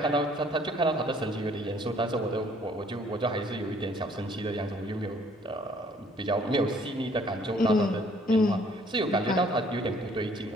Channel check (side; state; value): both; normal; correlation 0.60